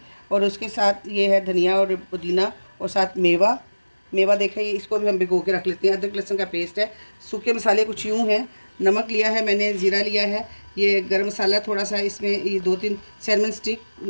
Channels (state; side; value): inverted; both; correlation -1.00